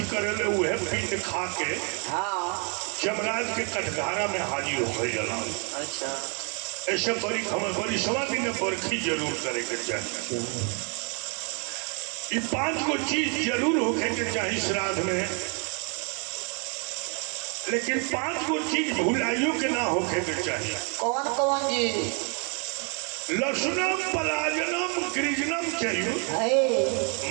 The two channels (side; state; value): left; quieter; 37.5 dB